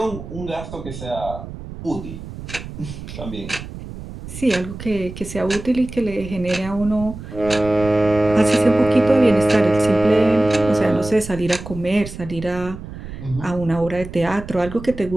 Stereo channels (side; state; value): right; noise; rumble, 12 dB below the sound